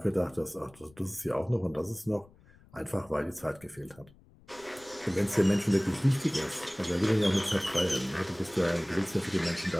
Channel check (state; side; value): noise; left; rumble, 26 dB below the sound